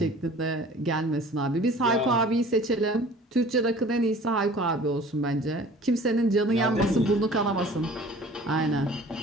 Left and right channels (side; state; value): both; normal; correlation 0.47